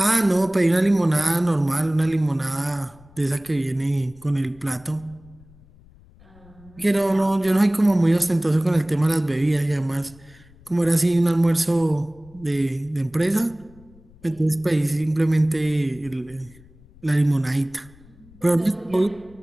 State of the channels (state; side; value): noise; left; rumble, 25 dB below the sound